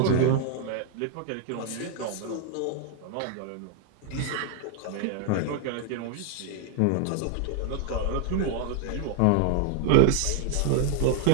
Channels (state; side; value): different; both; correlation 0.00